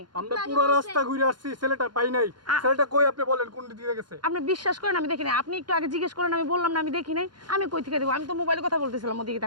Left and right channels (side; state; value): left; late; 0.71 ms